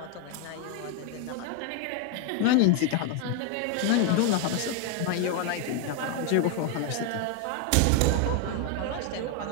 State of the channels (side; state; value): both; different; correlation 0.01